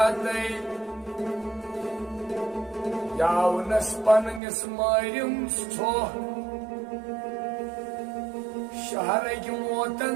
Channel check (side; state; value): left; drops out; at 4.4 s